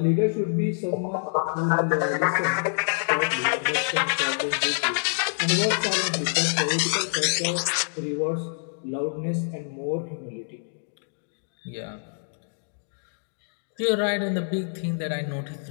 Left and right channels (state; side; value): silent; right; digital silence